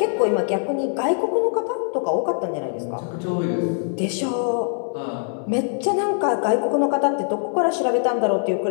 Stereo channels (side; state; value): right; silent; digital silence